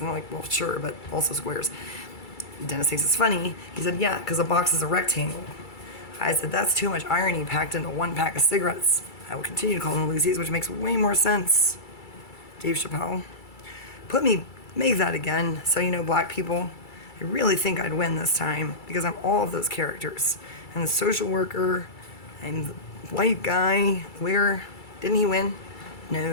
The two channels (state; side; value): late; right; 2.3 ms